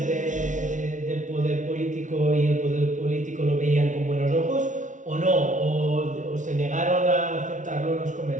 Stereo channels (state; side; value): late; left; 0.37 ms